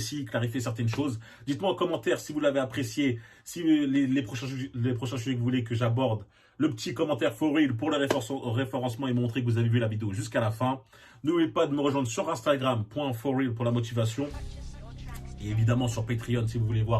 clarifier certaines choses. Dites-moi en commentaire si vous l'avez apprécié, si les prochains sujets que vous voulez que j'aborde. Le petit commentaire for real pour le référencement et montrer que vous avez vu la vidéo jusqu'à la fin. N'oubliez pas de me rejoindre sur Instagram, .forreal pour la motivation. Et évidemment sur Patreon si vous voulez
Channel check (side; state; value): both; identical; correlation 1.00